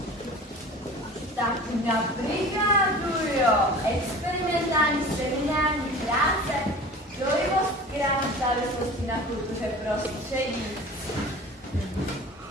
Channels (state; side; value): normal; both; correlation 0.40